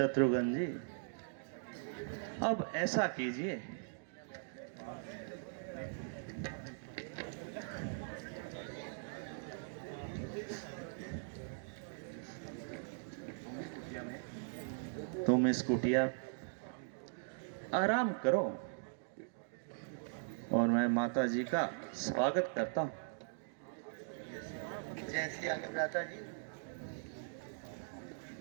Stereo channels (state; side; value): silent; left; digital silence